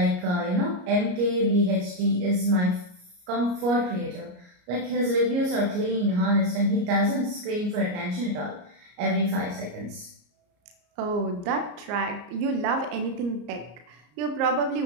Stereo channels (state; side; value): late; left; 34 ms